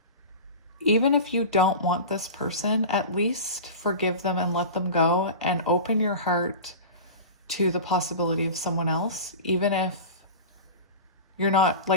even if you don't want this person, at least forgive them and let them go and open your heart to the possibility of someone else. Even if you're not,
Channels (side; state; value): both; inverted; correlation -0.31